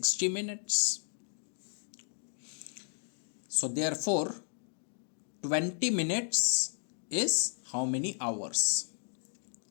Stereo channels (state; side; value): silent; right; digital silence